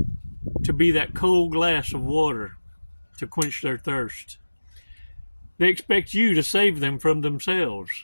to be that cold glass of water to quench their thirst. They expect you to save them from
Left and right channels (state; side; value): inverted; both; correlation -1.00